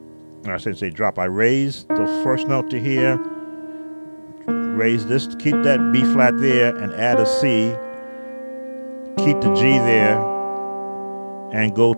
I shouldn't say drop. I raise the first note to here, raise this, keep that B flat there, and add a C. Keep the G there, and go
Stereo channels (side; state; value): both; inverted; correlation -1.00